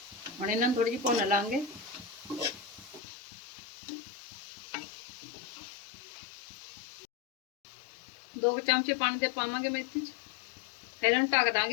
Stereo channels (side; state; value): right; drops out; at 3.0 s